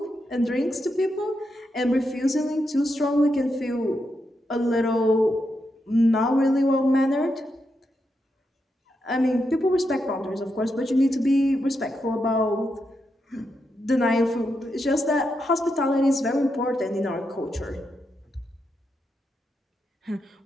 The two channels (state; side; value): normal; both; correlation 0.84